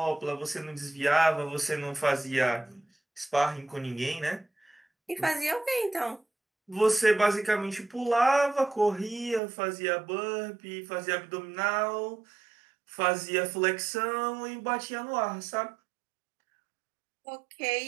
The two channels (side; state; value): left; drops out; at 9.4 s